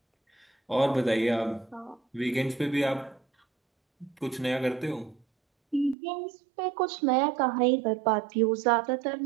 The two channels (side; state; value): left; drops out; at 6.0 s